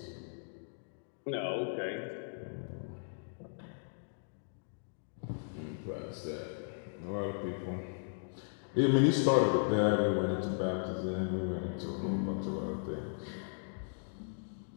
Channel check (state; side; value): silent; right; digital silence